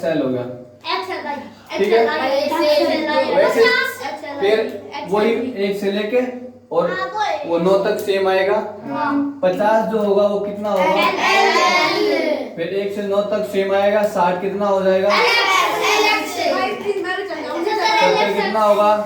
हो गया, ठीक है। वैसे फिर वही 1 से लेके और वो 9 तक सेम आएगा। 50 जो होगा वो कितना होगा? फिर 1 से 9 तक सेम आएगा। 60 कितना हो जाएगा? कितना होगा?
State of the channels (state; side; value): identical; both; correlation 1.00